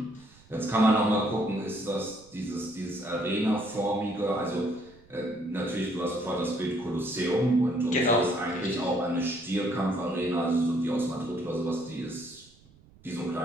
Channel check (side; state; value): right; noise; rumble, 27 dB below the sound